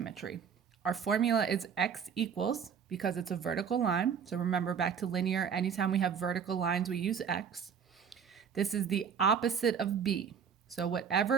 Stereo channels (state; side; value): quieter; left; 7.1 dB